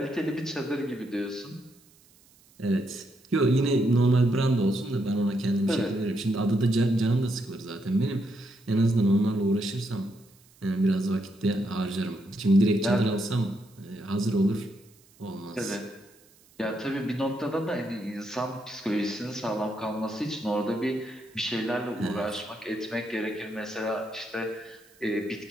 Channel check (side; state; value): right; noise; hiss, 29 dB below the sound